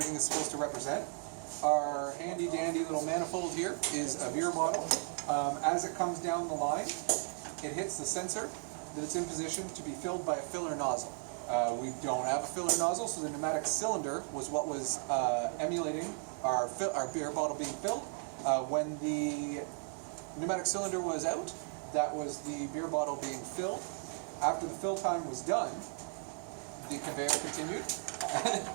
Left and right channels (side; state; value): left; silent; 54 dB below the other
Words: is supposed to represent. Our handy dandy little manifold here is a beer bottle. As it comes down the line, it hits the sensor that it's in position to be filled by a filler nozzle. We don't have a filler nozzle, so the pneumatic cylinder was what was emulating our beer bottle being filled. When the pneumatic cylinder was out, that was the beer bottle being filled. After the fill time was done, the conveyor continued.